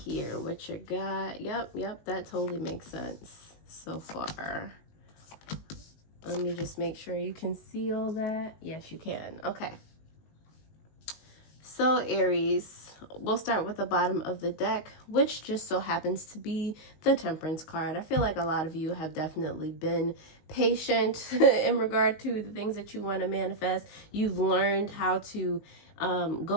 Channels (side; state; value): right; late; 19 ms